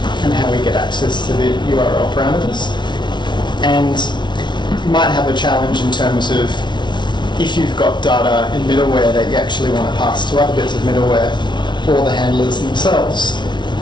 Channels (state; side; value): late; right; 0.22 ms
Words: and how we get access to the URL parameters. And you might have a challenge in terms of if you've got data in middleware that you actually want to pass to other bits of middleware or the handlers themselves.